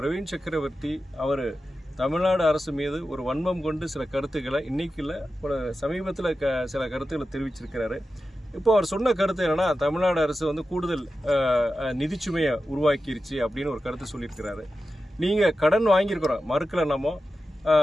சக்கரவர்த்தி அவர் தமிழ்நாடு அரசு மீது ஒரு வன்மம் கொண்டு சில கருத்துக்களை இன்னைக்கு இல்லை ஒரு சமீபத்தில் சில கருத்துக்களை தெரிவிச்சிருக்கிறாரு. இப்போ அவர் சொன்ன கருத்து என்னன்னா, தமிழ்நாடு அரசு வந்து கூடுதல் நிதிச்சுமையை உருவாக்கிருச்சு அப்படின்னு ஒரு கருத்து சொல்லியிருக்கிறாரு. நீங்கள் கடன் வாங்கியிருக்கிறோம் மறுக்கல நம்ம,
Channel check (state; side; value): normal; both; correlation 0.92